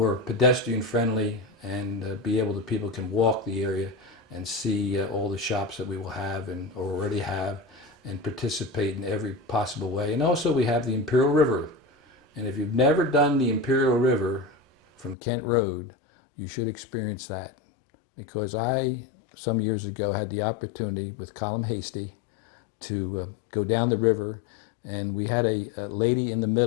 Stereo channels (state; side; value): drops out; right; at 15.2 s